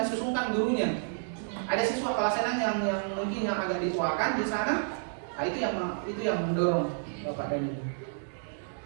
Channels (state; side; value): silent; left; digital silence